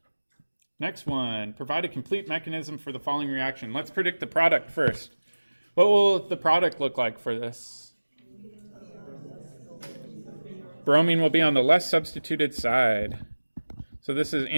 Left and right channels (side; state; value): both; inverted; correlation -1.00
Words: Next one, provide a complete mechanism for the following reaction. Let's predict the product first. What will the product look like for this? Bromine will be on the less substituted side. So this is